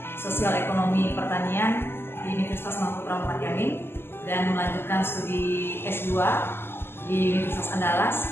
Sosial Ekonomi Pertanian di Universitas Mahputra Muhammad Yamin dan melanjutkan studi S2 di Universitas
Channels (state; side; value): late; right; 0.11 ms